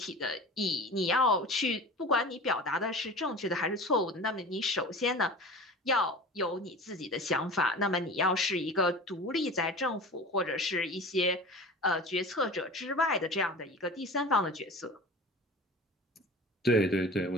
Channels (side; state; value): both; normal; correlation 0.36